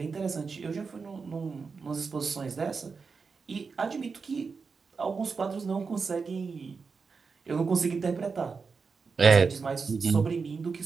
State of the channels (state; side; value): quieter; left; 5.0 dB